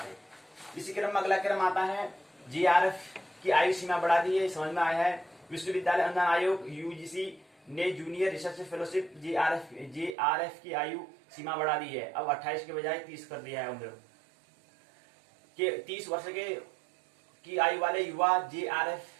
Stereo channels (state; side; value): drops out; left; at 10.2 s